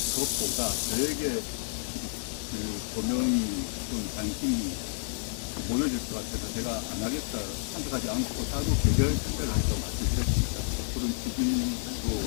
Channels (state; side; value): silent; right; 58 dB below the other